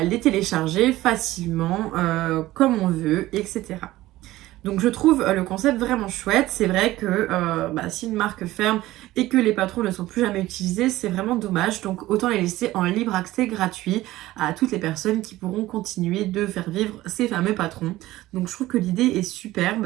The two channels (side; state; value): left; quieter; 16.6 dB